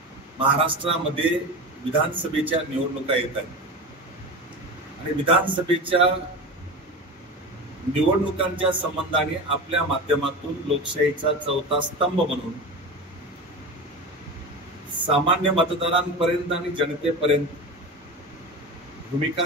महाराष्ट्रामध्ये विधानसभेच्या निवडणुका येत आहेत आणि विधानसभेच्या निवडणुकांच्या संबंधाने आपल्या माध्यमातून लोकशाहीचा चौथा स्तंभ म्हणून सामान्य मतदारांपर्यंत आणि जनतेपर्यंत भूमिका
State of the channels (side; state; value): both; normal; correlation 0.26